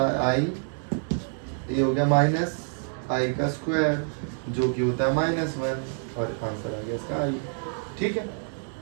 i, ये हो गया -i का स्क्वायर, जो कि होता है -1, और आंसर आ गया इसका i, ठीक है,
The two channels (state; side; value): silent; left; 60 dB below the other